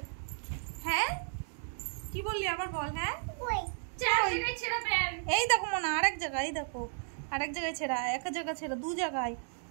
হ্যাঁ কি বললি আবার বল। হ্যাঁ এই দেখো মনা আরেক জায়গায়, এই দেখো আরেক জায়গায় ছেঁড়া, এক জায়গা ছেঁড়া, দু জায়গায়,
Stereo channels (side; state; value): left; silent; digital silence